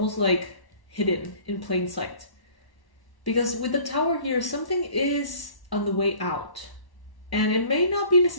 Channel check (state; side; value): late; right; 1.1 ms